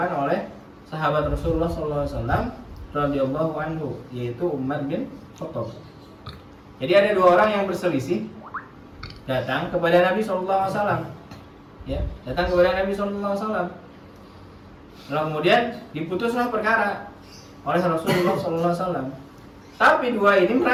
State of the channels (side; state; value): both; identical; correlation 1.00